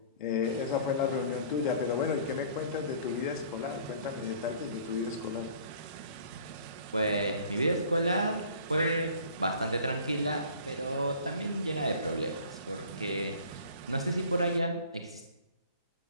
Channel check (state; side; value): inverted; both; correlation -0.50